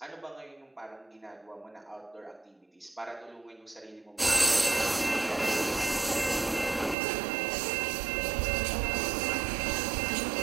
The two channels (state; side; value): drops out; left; at 7.0 s